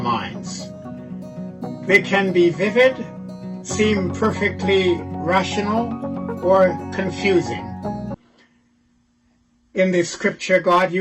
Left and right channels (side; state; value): both; identical; correlation 1.00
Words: minds. They can be vivid, seem perfectly rational, or confusing. In the scripture, God